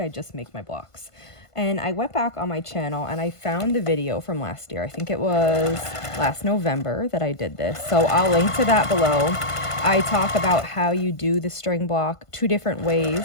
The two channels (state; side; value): late; right; 1.5 ms